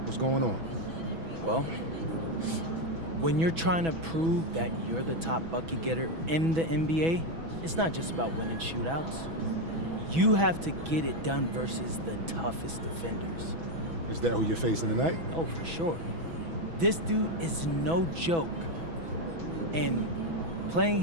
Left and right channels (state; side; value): late; left; 6.1 ms